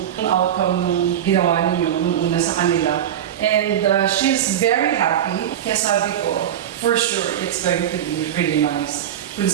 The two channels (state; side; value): quieter; left; 10.3 dB